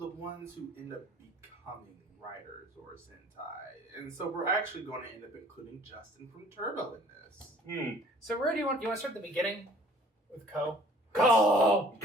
ones who end up becoming writers or Sentai. And so we're actually going to end up including Justin from Turbo in this. So where do you want to start at the beginning with Ko? Go!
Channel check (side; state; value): both; normal; correlation 0.54